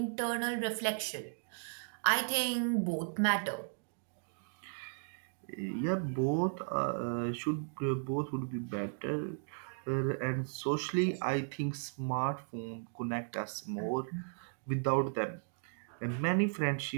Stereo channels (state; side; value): silent; left; digital silence